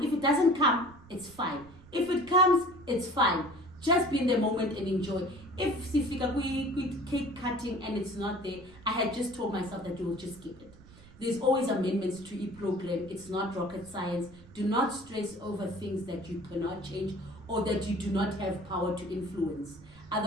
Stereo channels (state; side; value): noise; right; rumble, 22 dB below the sound